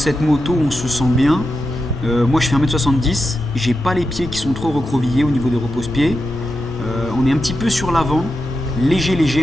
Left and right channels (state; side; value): normal; both; correlation 0.89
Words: moto on se sent bien. Moi je fais 1m70, j'ai pas les pieds qui sont trop recroquevillés au niveau des repose-pieds. On est un petit peu sur l'avant,